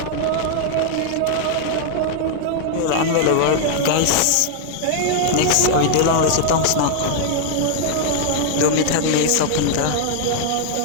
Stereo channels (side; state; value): both; different; correlation 0.00